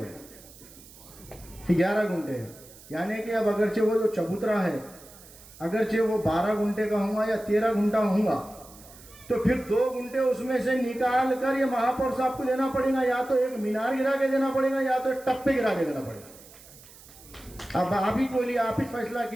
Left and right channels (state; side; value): noise; right; hiss, 21 dB below the sound